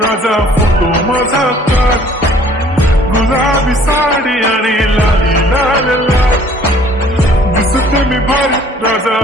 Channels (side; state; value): both; normal; correlation 0.56